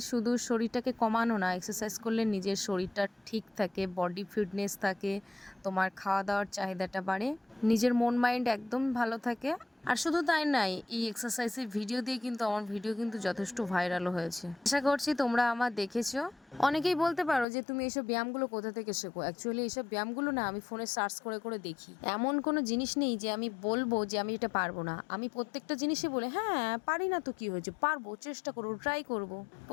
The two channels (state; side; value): drops out; right; at 17.4 s